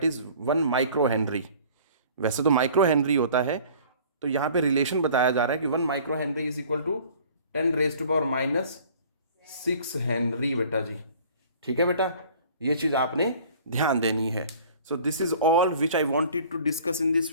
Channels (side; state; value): both; inverted; correlation -0.49